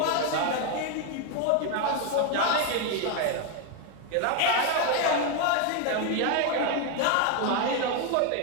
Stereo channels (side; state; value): both; different; correlation 0.01